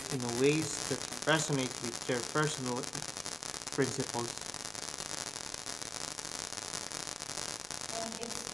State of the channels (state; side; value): normal; both; correlation 0.97